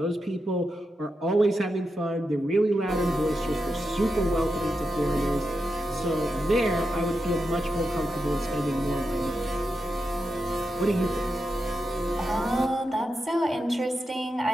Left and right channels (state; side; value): normal; both; correlation 0.88